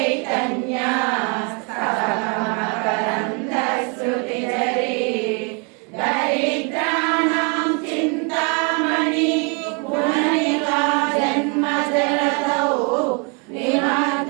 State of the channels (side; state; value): left; quieter; 34.0 dB